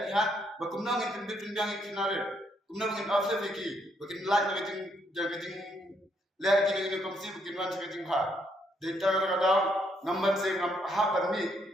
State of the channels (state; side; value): normal; both; correlation 0.73